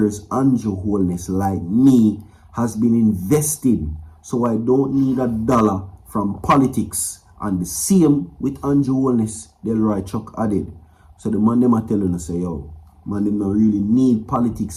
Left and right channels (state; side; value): identical; both; correlation 1.00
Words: Andrew Holness, like me, has been investing, so I don't need a dollar from politics. And the same with Andrew Holness, Delroy Chuck added. So the man them are telling us, say, yo, man them don't really need